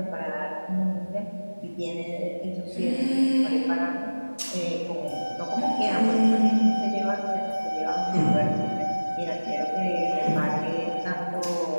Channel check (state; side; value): inverted; both; correlation -1.00